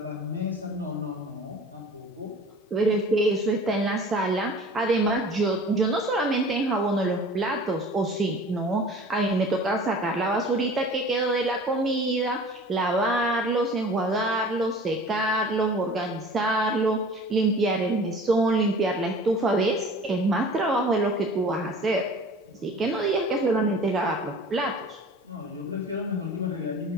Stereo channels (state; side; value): normal; both; correlation 0.43